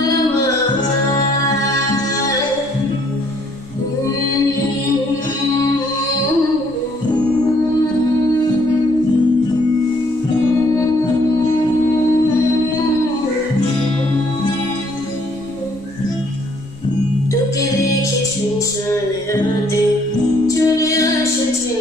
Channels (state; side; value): noise; right; rumble, 23 dB below the sound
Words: তোকে দেখি শুনশানে রাতে চলে আসে